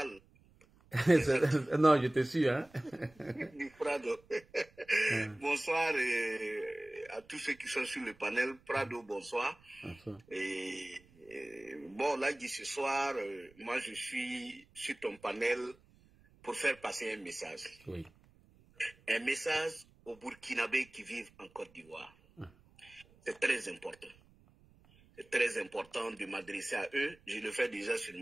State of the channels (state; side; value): noise; right; rumble, 28 dB below the sound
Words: Non, je te suis, hein. Du Prado. Bonsoir à tous ceux qui sont sur le panel. Prado, bonsoir. Bon, Lagui, ce soir, moi je suis sur ton panel pour faire passer un message. Oui. Un message aux Burkinabés qui vivent en Côte d'Ivoire. C'est très important. C'est très important de m'adresser à eux. Je le fais déjà sur